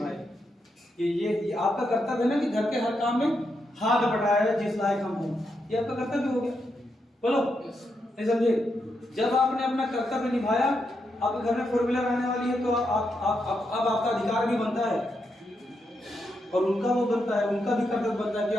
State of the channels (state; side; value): normal; both; correlation 0.82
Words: ये आपका कर्तव्य है ना कि घर के हर काम में हाथ बटाया जिस लायक हम हों, ये आपका कर्तव्य हो गया, बोलो नहीं समझे। जब आपने अपना कर्तव्य निभाया, आपके घर में 4 व्हीलर आने वाली है, तो अब आपका अधिकार भी बनता है और उनका वो बनता है, उनका भी कर्तव्य बनता है कि